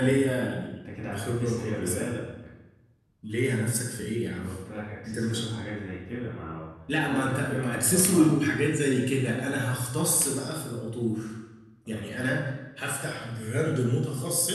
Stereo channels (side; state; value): both; identical; correlation 1.00